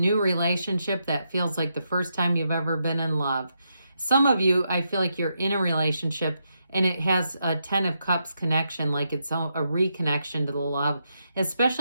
relationship that feels like the first time you've ever been in love. Some of you, I feel like you're in a relationship and it has a 10 of Cups connection, like it's a reconnection to the love,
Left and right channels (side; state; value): both; inverted; correlation -0.82